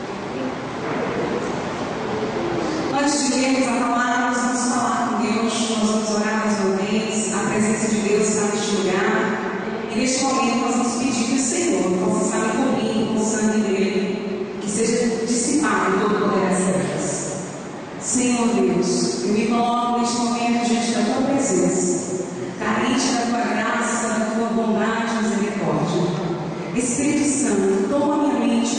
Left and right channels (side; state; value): both; identical; correlation 1.00